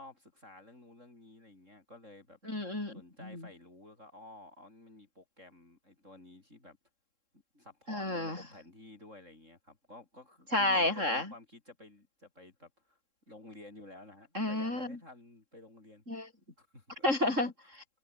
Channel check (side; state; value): left; late; 3.7 ms